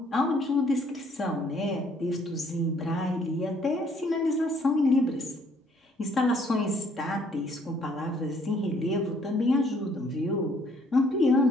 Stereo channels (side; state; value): both; normal; correlation 0.64